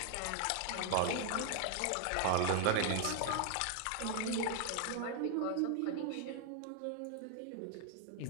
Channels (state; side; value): different; both; correlation 0.00